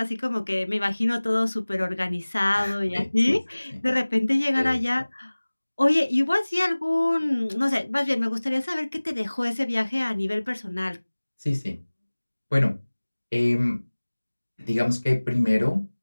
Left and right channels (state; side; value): inverted; both; correlation -1.00